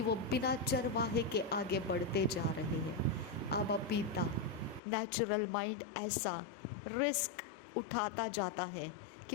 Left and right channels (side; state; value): right; drops out; at 4.8 s